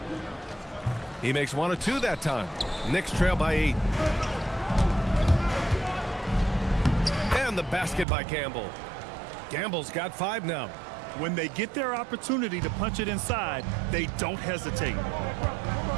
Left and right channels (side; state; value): left; drops out; at 8.1 s